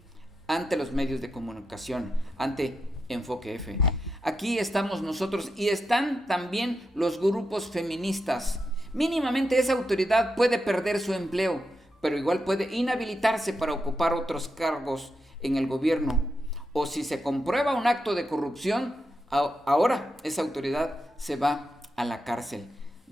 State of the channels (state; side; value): normal; both; correlation 0.85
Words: ante los medios de comunicación, ante Enfoque F. Aquí estamos nosotros y están también los grupos feministas. Mínimamente esa autoridad puede perder su empleo, pero igual puede inhabilitarse para ocupar otros cargos en el gobierno. O si se comprueba un acto de corrupción, ahora esa autoridad se va a la cárcel.